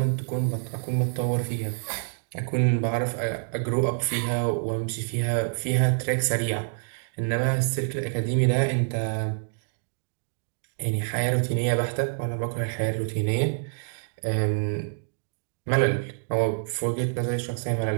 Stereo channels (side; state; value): left; silent; digital silence